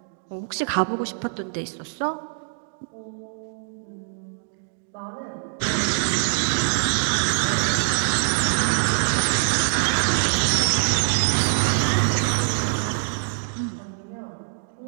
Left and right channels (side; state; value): left; silent; digital silence